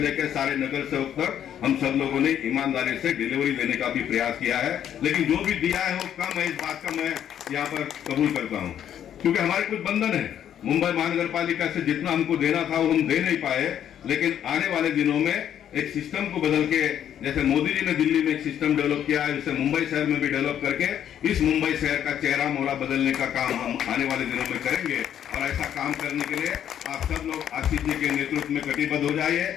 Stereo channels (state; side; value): quieter; right; 10.0 dB